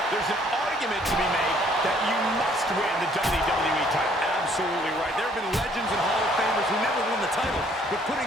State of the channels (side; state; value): both; normal; correlation 0.62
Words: there's an argument to be made that you must win the WWE title. Absolutely right. There have been legends and Hall of Famers who never won the title, but